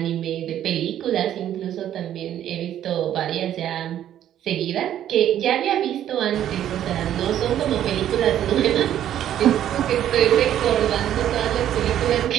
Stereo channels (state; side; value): quieter; left; 11.1 dB